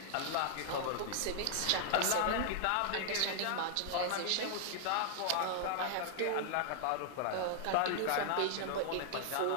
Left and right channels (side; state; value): both; different; correlation -0.01